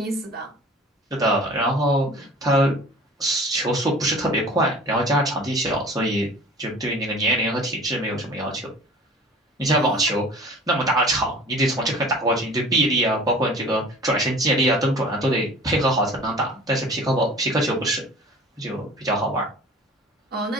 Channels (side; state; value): both; normal; correlation 0.43